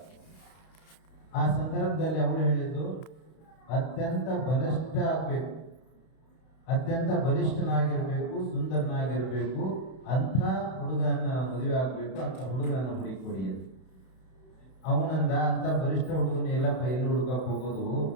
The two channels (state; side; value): late; right; 32 ms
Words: ಆ ಸಂದರ್ಭದಲ್ಲಿ ಅವಳು ಹೇಳಿದ್ದು, ಅತ್ಯಂತ ಬಲಿಷ್ಠ ಆಗಬೇಕು, ಅತ್ಯಂತ ಬಲಿಷ್ಠನಾಗಿರಬೇಕು, ಸುಂದರನಾಗಿರಬೇಕು, ಅಂಥ ಹುಡುಗನ ಮದುವೆ ಆಗಬೇಕು, ಅಂಥ ಹುಡುಗನನ್ನು ಹುಡುಕೊಡಿ ಅಂತ. ಅವನಂದ, ಅಂಥ ಬಲಿಷ್ಠ ಹುಡುಗನ ಎಲ್ಲಪ್ಪ ಎಲ್ಲಿ ಹುಡುಕಕ್ಕೆ ಹೋಗೋದು,